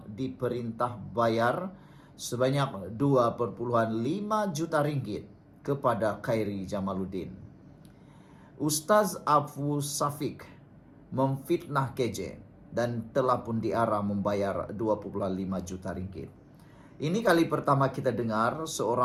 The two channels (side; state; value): both; identical; correlation 1.00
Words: diperintah bayar sebanyak 2,5 juta ringgit kepada Khairi Jamaluddin. Ustaz Abu Safik memfitnah KJ dan telah pun diarah membayar 2,5 juta ringgit. Ini kali pertama kita dengar